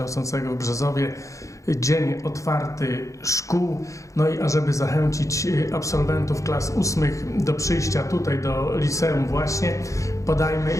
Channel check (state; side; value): late; right; 0.15 ms